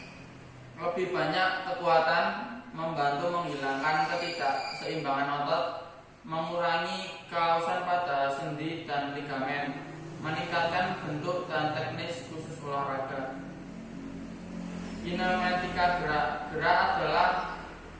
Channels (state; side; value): identical; both; correlation 1.00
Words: lebih banyak kekuatan, membantu menghilangkan ketidakseimbangan otot, mengurangi kausan pada sendi dan ligamen, meningkatkan bentuk dan teknis khusus olahraga. Kinematika gerak. Gerak adalah